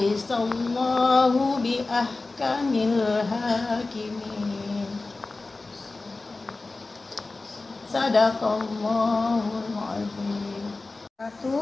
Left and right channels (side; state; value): right; quieter; 3.4 dB